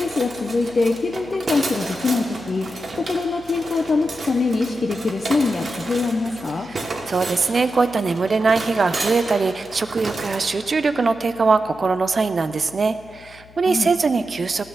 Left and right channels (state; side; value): noise; left; hum, 23 dB below the sound